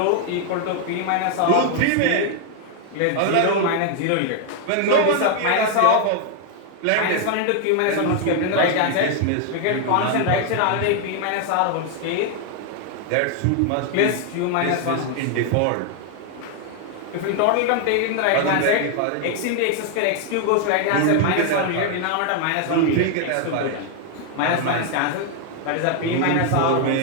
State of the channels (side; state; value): both; different; correlation 0.00